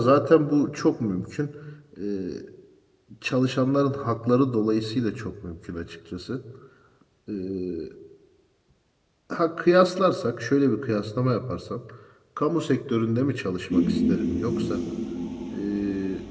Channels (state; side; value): identical; both; correlation 1.00